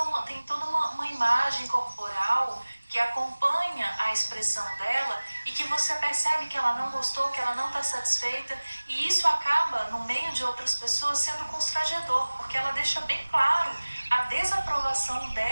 tem toda uma imagem corporal que acompanha a expressão dela e que você percebe que ela não gostou, que ela não está satisfeita, e isso acaba, no meio de outras pessoas, sendo constrangedor, porque ela deixa bem claro a desaprovação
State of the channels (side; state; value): both; inverted; correlation -1.00